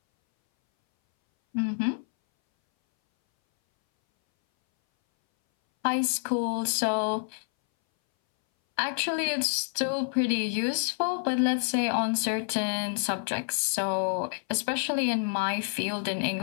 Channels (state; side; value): silent; right; 59 dB below the other